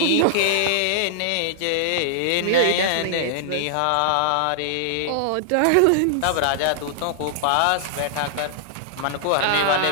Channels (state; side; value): different; both; correlation -0.01